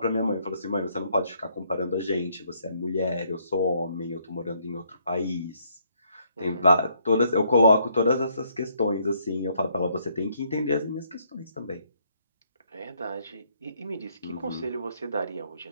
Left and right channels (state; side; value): inverted; both; correlation -0.70